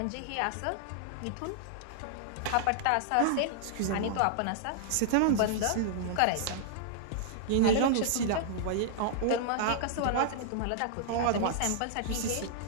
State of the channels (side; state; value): both; different; correlation -0.01